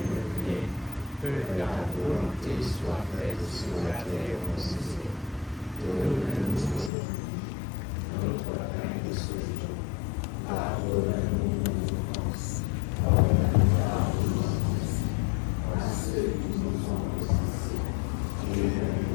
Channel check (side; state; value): right; drops out; at 6.9 s